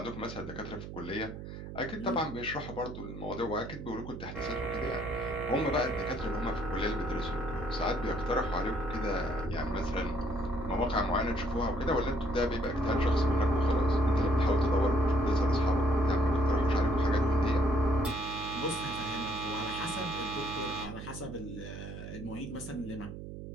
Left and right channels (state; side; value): noise; right; hum, 10 dB below the sound